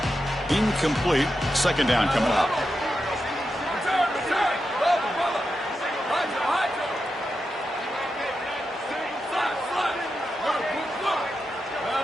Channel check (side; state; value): both; normal; correlation 0.88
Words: Incomplete. Second down coming up.